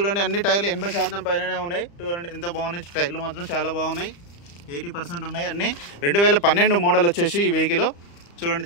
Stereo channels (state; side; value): late; right; 35 ms